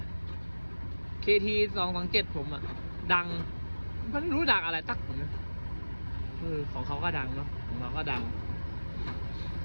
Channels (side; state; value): both; inverted; correlation -1.00